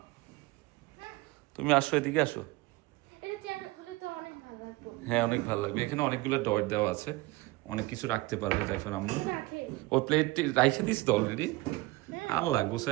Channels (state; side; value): quieter; left; 20.9 dB